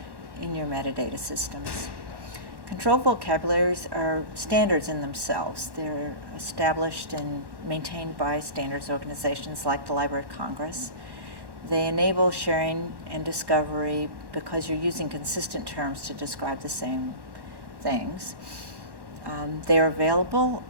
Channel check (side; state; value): left; late; 1.1 ms